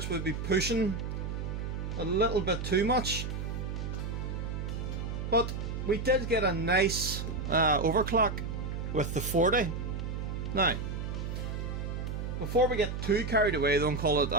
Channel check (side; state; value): right; noise; hum, 4 dB below the sound